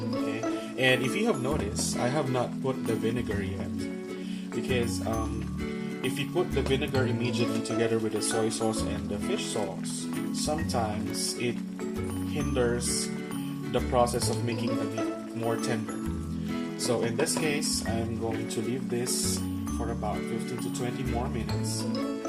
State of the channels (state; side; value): identical; both; correlation 1.00